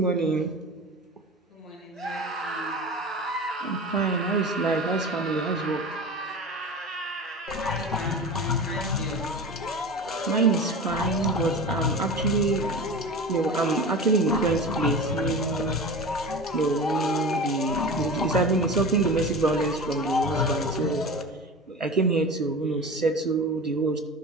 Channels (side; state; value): both; normal; correlation 0.32